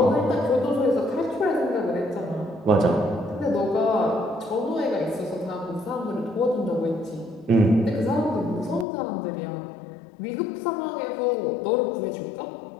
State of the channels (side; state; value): right; drops out; at 8.8 s